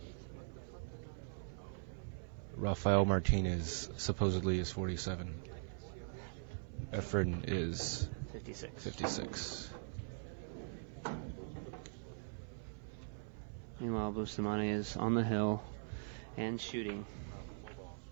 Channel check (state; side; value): silent; left; 50 dB below the other